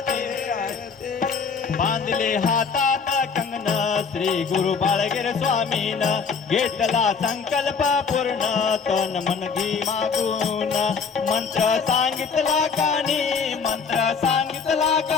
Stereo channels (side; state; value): right; quieter; 5.6 dB